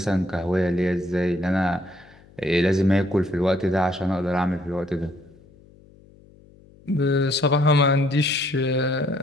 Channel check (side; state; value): left; noise; hum, 26 dB below the sound